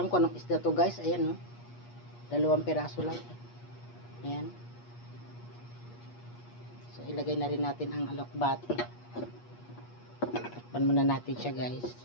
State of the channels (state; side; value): late; right; 8.4 ms